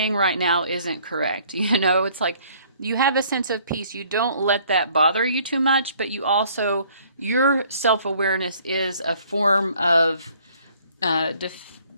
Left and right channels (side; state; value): both; inverted; correlation -0.59